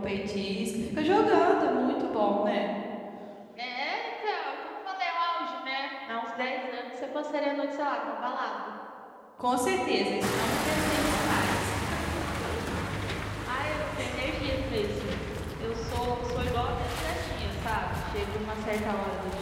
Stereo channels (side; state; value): both; identical; correlation 1.00